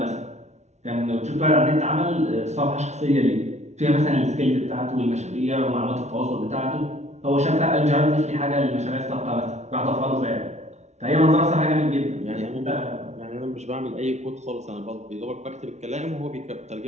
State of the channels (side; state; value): left; late; 0.32 ms